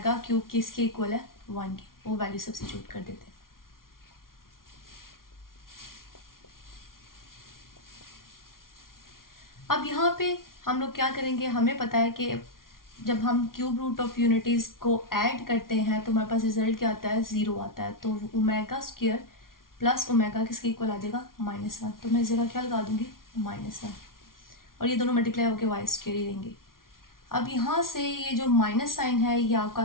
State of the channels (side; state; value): right; late; 0.92 ms